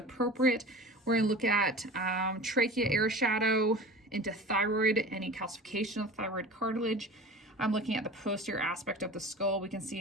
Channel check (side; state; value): both; normal; correlation 0.37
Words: We're gonna look at trachea air shadow into thyroid, any calcification of thyroid cartilage. I'm looking at the posterior aspect of the skull. We can